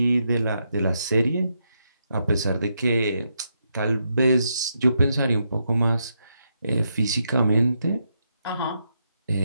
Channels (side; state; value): both; inverted; correlation -0.81